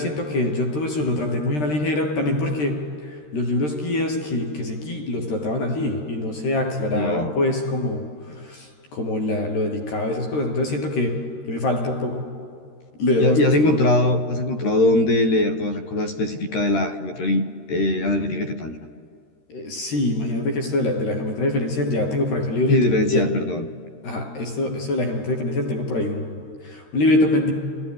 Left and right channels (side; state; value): right; late; 13 ms